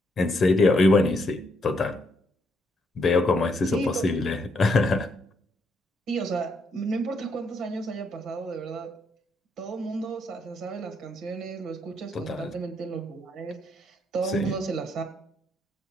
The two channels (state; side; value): normal; both; correlation 0.75